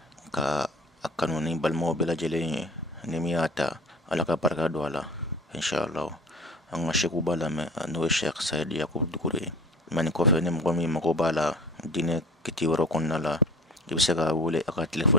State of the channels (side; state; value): both; normal; correlation 0.41